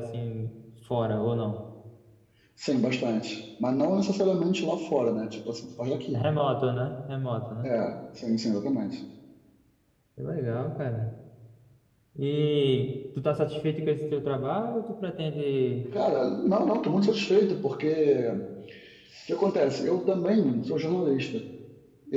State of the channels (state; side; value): identical; both; correlation 1.00